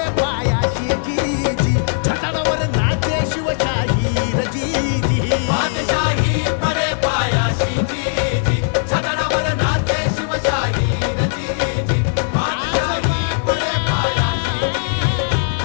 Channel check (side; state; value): right; silent; 57 dB below the other